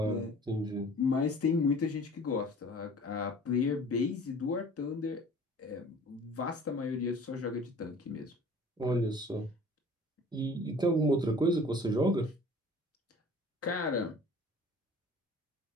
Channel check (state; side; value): normal; both; correlation 0.47